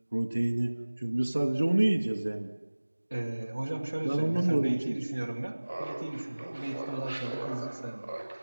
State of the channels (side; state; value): both; inverted; correlation -1.00